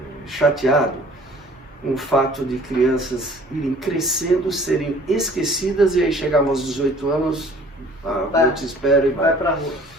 chateado com o fato de crianças irem crescendo, serem esquecidas e aí chegavam aos 18 anos, eu te espero e vai para a rua.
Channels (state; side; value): normal; both; correlation 0.52